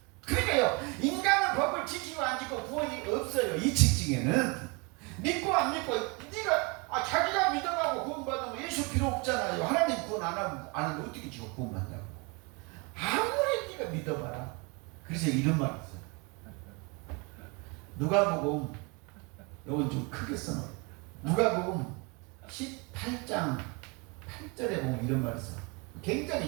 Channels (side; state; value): left; quieter; 29.9 dB